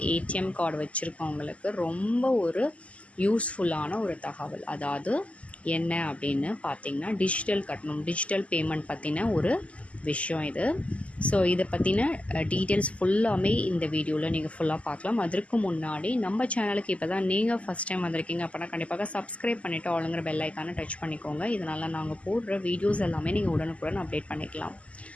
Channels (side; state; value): right; late; 0.064 ms